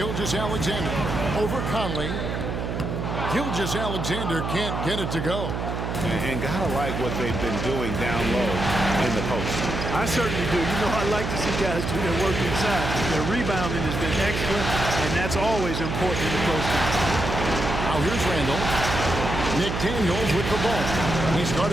Over Conley. Gilgeous-Alexander can't get it to go. And gotta like what they've been doing down low in the post. I certainly do. You know, I like to see guys do their work inside. Their rebounding has been excellent, and that's always important in the post game. Now here's Randall. McDaniels with the ball. He's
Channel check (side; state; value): right; noise; hum, 3 dB below the sound